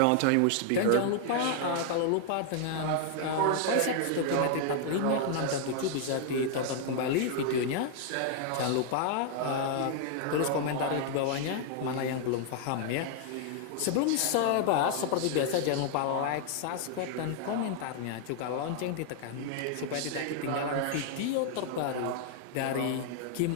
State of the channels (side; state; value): both; different; correlation 0.00